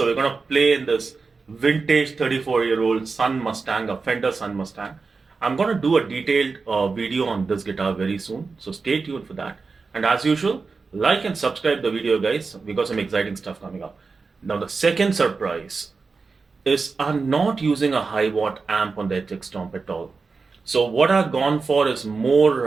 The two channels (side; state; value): left; quieter; 4.4 dB